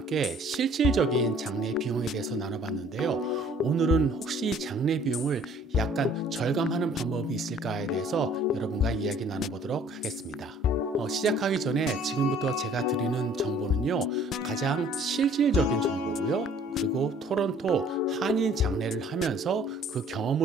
실질적인 장례 비용에 대해서 나눠봤는데요. 오늘은 혹시 장례 비용을 약간 절감하는 방법이 있을까에 대해서 여러분과 이야기 나눠보도록 하겠습니다. 시작하기 전에 지금부터 제가 드리는 정보는요, 가장 실질적인 정보고요. 그리고 토론토 한인 장례를 하면서 그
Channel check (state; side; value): normal; both; correlation 0.55